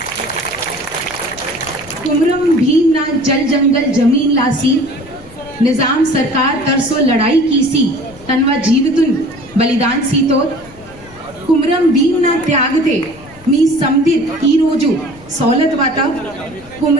कुमरम भीम ना जल जंगल जमीन लासी निजाम सरकार तरसो लड़ाई कीसी तनवा जीवितुन बलिदान सीतो कुमरम भीम ना त्यागते मी समदिर ई रोजु सौलत वाता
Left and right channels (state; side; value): noise; left; rumble, 23 dB below the sound